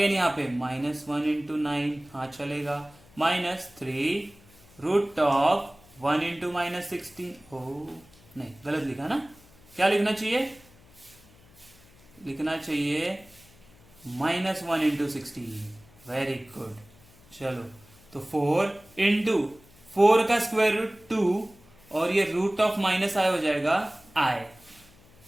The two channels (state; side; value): noise; left; hum, 26 dB below the sound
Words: यहाँ पे -1 इंटू 9, हाँ चलेगा। -3 रूट ऑफ 1 इंटू -16, ओ नहीं गलत लिखा ना, क्या लिखना चाहिए? लिखना चाहिए -1 इंटू 16। Very good. चलो तो 4 इंटू 4 का स्क्वायर रूट 2 और ये रूट ऑफ माइनस आई हो जाएगा i,